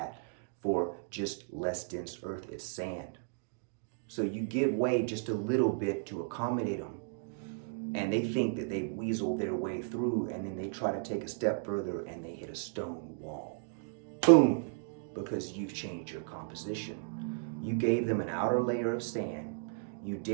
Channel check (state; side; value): silent; left; digital silence